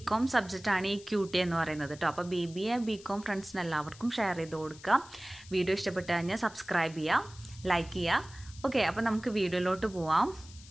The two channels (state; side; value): noise; left; hiss, 20 dB below the sound